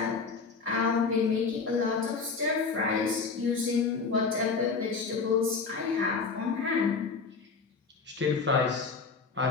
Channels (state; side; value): quieter; right; 4.8 dB